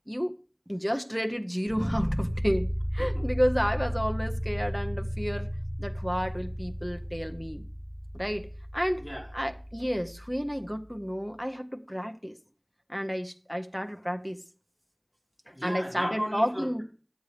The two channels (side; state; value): both; identical; correlation 1.00